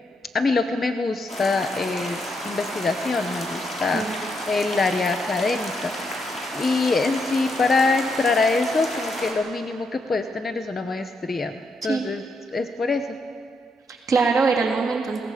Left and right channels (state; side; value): normal; both; correlation 0.79